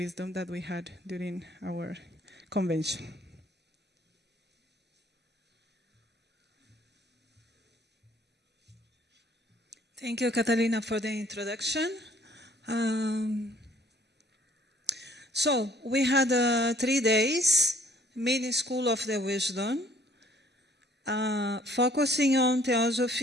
that we had during our convention. Thank you, Catalina, for the introduction. So we had 3 days, mini school of the wisdom, focusing on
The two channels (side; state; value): both; normal; correlation 0.60